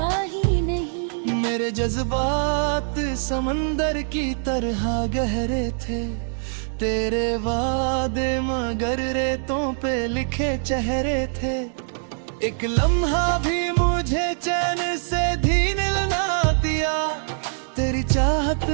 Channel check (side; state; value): left; silent; digital silence